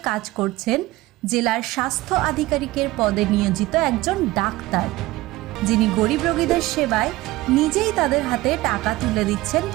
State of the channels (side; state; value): left; quieter; 18.8 dB